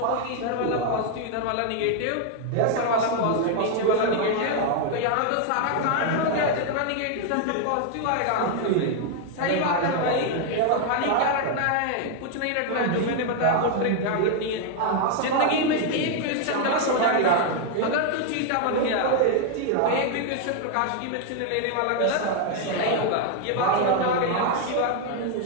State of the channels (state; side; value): different; both; correlation 0.00